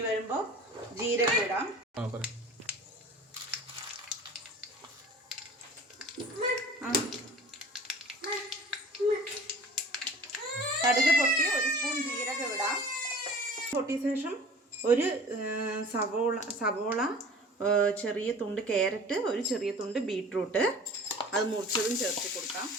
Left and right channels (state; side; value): normal; both; correlation 0.43